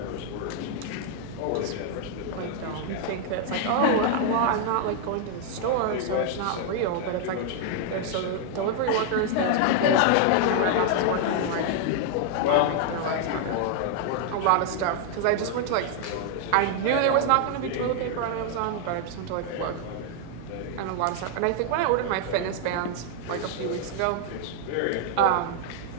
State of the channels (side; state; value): both; different; correlation 0.00